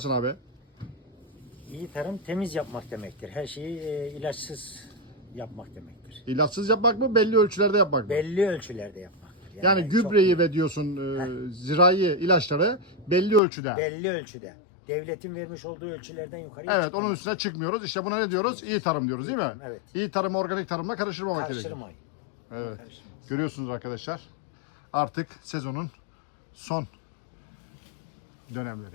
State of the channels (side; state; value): right; drops out; at 13.4 s